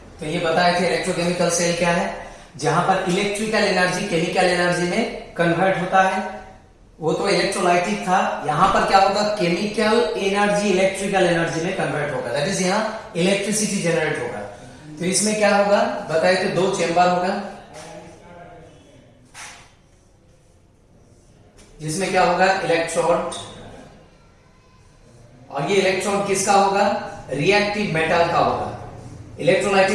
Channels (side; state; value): both; identical; correlation 1.00